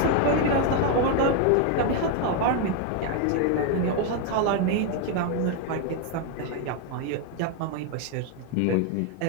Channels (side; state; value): both; different; correlation 0.01